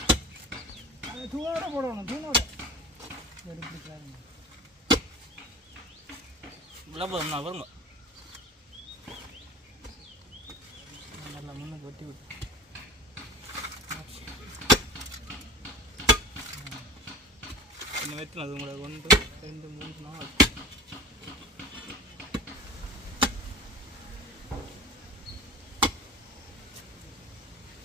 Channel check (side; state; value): both; normal; correlation 0.37